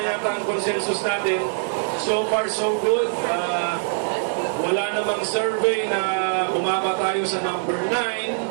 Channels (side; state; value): left; silent; digital silence